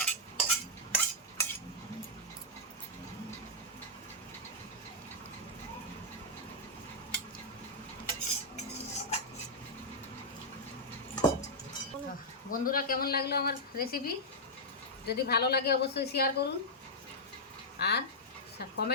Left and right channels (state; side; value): normal; both; correlation -0.08